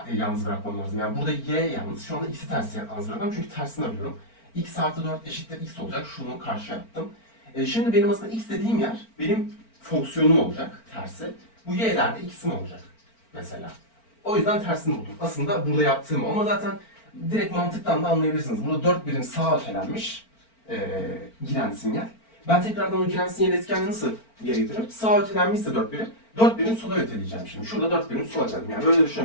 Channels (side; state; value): right; late; 4.4 ms